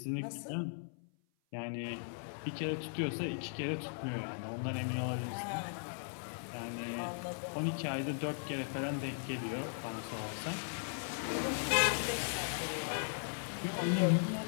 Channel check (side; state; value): right; silent; 53 dB below the other